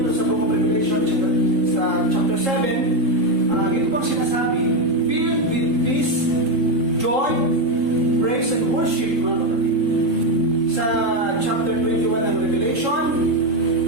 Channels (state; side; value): late; left; 3.7 ms